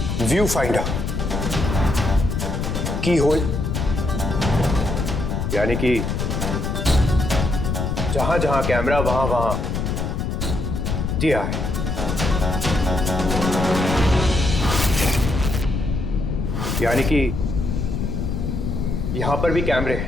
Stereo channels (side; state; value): left; noise; rumble, 2 dB below the sound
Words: व्यू फाइंडर, की होल, यानी कि जहां जहां कैमरा वहां वहां दिया है। यानी कि यहां पर भी कैमरे